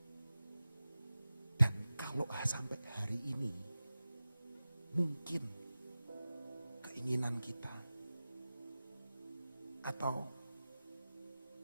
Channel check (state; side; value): inverted; both; correlation -0.96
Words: Dan kalau sampai hari ini, mungkin keinginan kita atau